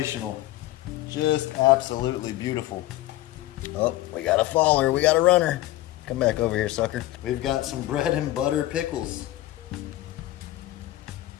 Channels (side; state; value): right; quieter; 16.1 dB